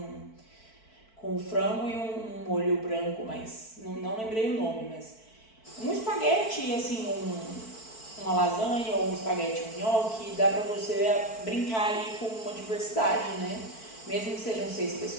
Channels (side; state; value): right; late; 4.5 ms